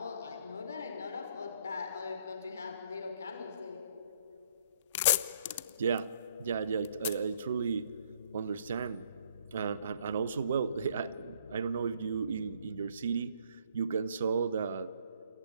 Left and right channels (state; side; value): inverted; both; correlation -0.63